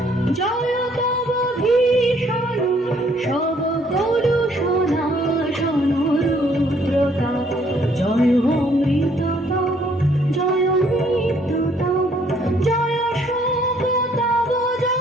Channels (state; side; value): normal; both; correlation 0.64